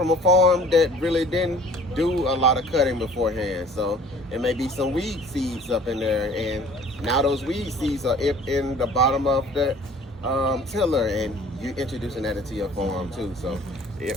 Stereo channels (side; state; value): both; normal; correlation 0.51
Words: a farm that really didn't do a lot of cutting beforehand, so it may be some weed seeds up in there, and now those weed seeds are in the bottom of the tiller, and you're introducing that into your farm too. So